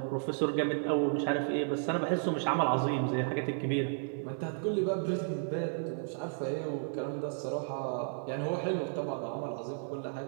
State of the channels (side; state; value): left; silent; 56 dB below the other